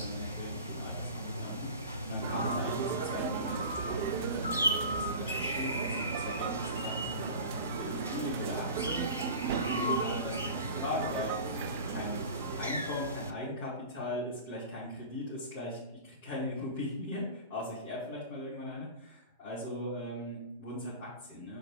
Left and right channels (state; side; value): inverted; both; correlation -0.36